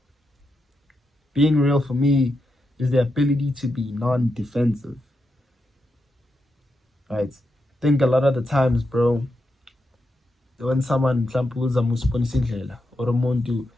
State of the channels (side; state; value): both; normal; correlation 0.86